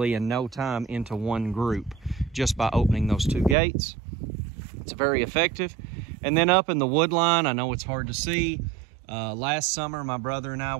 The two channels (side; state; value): left; drops out; at 3.6 s